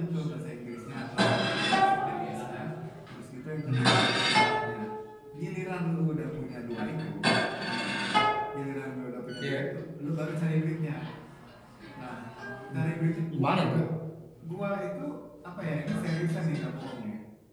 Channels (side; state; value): both; identical; correlation 1.00